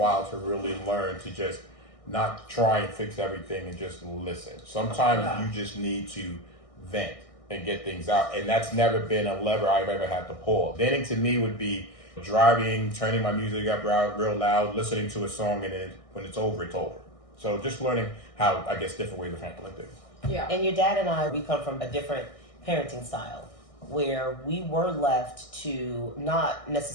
to really learn to just not try and fix everything and just listen. Sometimes you just need to vent and get things out, and that's never been a lever I've ever had to pull. Venting to me would be driving, turning my music up real loud, listening to a song, and then when it's over, it's over. So just learning how, I guess, different ways of handling things. Yeah. And your dad and I, we come from a different parenting style where we were left to not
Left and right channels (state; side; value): late; right; 1.6 ms